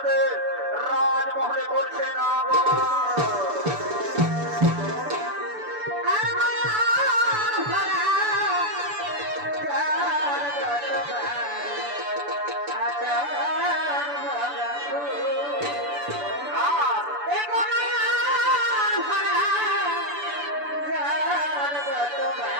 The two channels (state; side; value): late; left; 6.9 ms